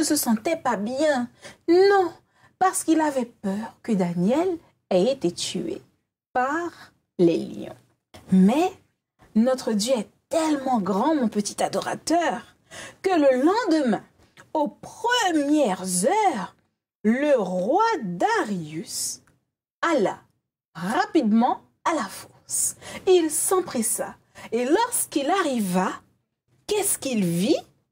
se sentait pas bien. Non, parce qu'il avait peur que Daniel ait été tué par les lions. Mais notre Dieu est tellement grand, mon petit adorateur, que le lendemain, aux premières heures, le roi Darius alla rapidement à la fosse. Il s'empressa. Et lorsqu'il arriva, qu'est-ce qu'il vit?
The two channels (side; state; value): both; identical; correlation 1.00